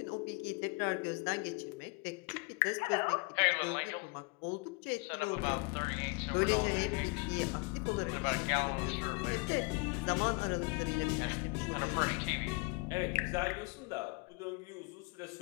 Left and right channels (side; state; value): right; quieter; 29.2 dB